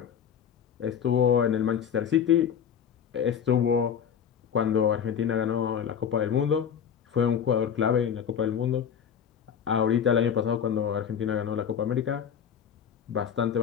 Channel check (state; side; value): quieter; right; 8.1 dB